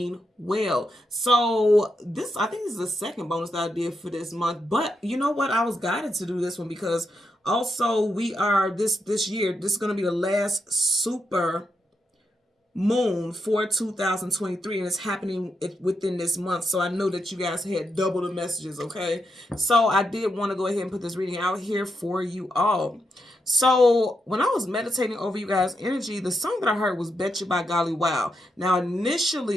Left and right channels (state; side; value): normal; both; correlation 0.83